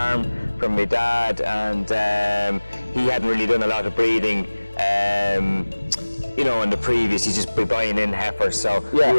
from my dad, and he hadn't really done a lot of breeding in the previous. He's just been buying in heifers, so we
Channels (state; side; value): inverted; both; correlation -1.00